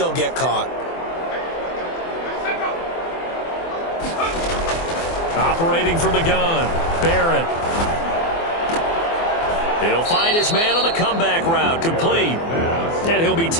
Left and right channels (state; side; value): late; right; 24 ms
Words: get caught. Operating from the gun, Barrett. He'll find his man on the comeback route, complete. And he'll be